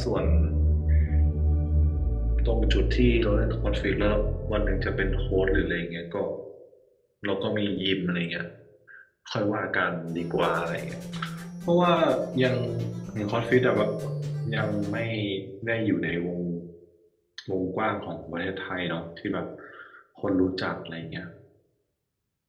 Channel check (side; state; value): both; identical; correlation 1.00